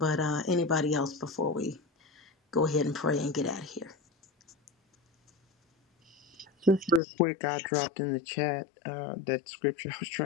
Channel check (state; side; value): drops out; right; at 7.0 s